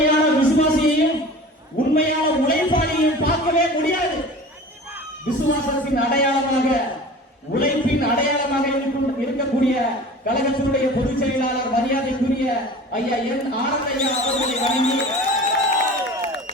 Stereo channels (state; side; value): normal; both; correlation 0.39